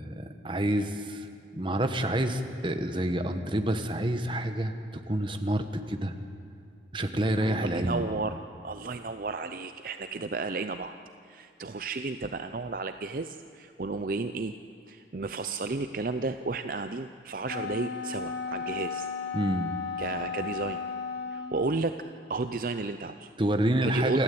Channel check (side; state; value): both; normal; correlation 0.50